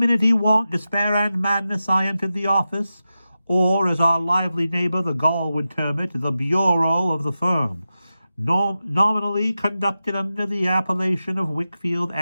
want, despair, and madness, I entered the office, or, as our lively neighbor the Gaul would term it, the bureau of the firm, nominally conducted under the appellation of Wickfield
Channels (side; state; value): both; inverted; correlation -0.92